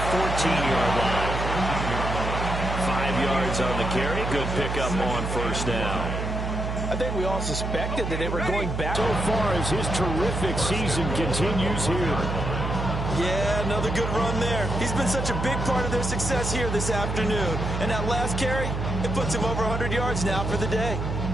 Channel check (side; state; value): right; noise; hum, 3 dB below the sound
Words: 14-yard line. 5 yards on the carry. Good pickup on first down. I think we all suspected that they were going back. So far as his terrific season continues here. Yeah, another good run there. He's been such a big part of their success here this afternoon. And that last carry, it puts him over 100 yards now for the day.